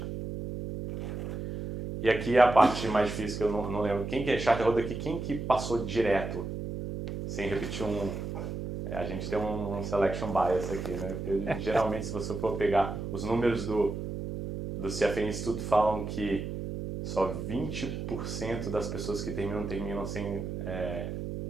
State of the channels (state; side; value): noise; right; hum, 5 dB below the sound